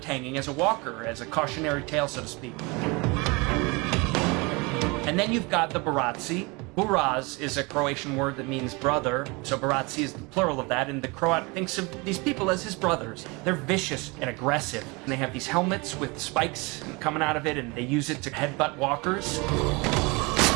hanging as a walker, as a cautionary tale, so to speak. And then you've got the Bratzi. Buraz is a Croatian word that means brother, so Bratzi is the plural of that, and the Croat thinks of these people as his brothers. They're vicious and aggressive, and they have these helmets with spikes coming out of it, and they use it to headbutt walkers.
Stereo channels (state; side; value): quieter; left; 27.1 dB